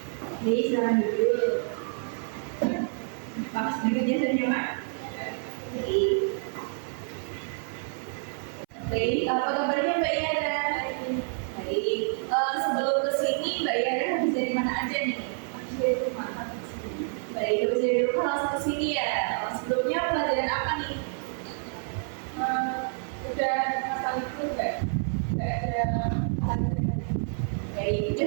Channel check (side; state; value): left; silent; 59 dB below the other